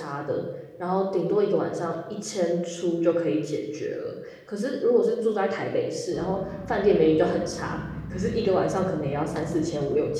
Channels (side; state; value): both; identical; correlation 1.00